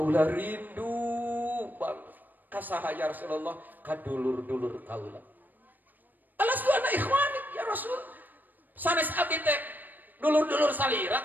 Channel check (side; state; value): left; late; 0.088 ms